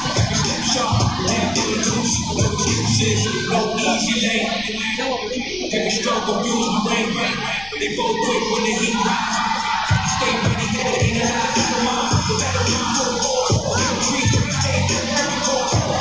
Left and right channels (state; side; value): noise; left; rumble, 18 dB below the sound